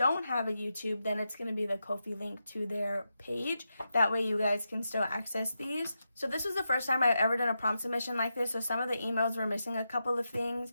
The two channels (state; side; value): inverted; both; correlation -0.87